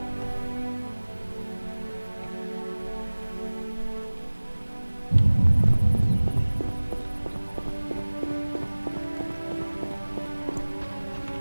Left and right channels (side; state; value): both; inverted; correlation -1.00